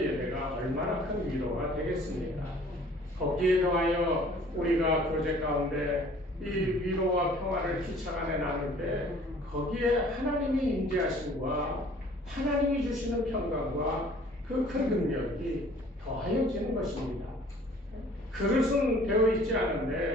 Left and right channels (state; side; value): normal; both; correlation 0.52